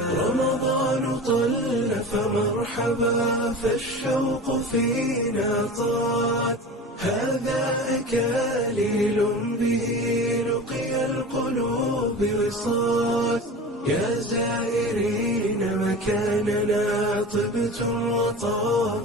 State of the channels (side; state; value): both; normal; correlation 0.33